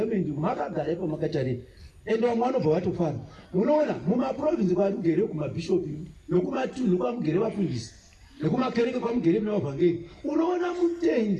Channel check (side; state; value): both; identical; correlation 1.00